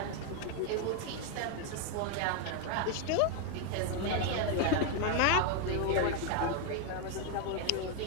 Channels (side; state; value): both; different; correlation 0.01